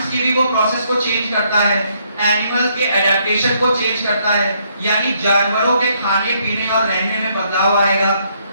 की भी वो प्रोसेस को चेंज करता है, एनिमल के एडेप्टेशन को चेंज करता है, यानी जानवरों के खाने पीने और रहने में बदलाव आएगा,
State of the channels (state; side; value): inverted; both; correlation -0.71